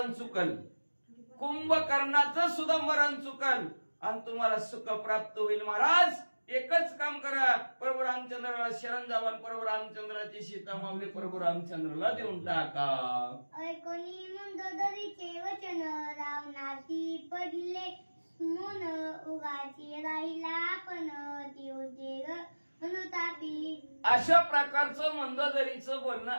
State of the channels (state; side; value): inverted; both; correlation -1.00